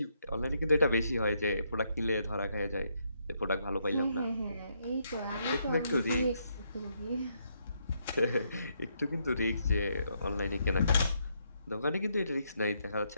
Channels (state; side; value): inverted; both; correlation -0.76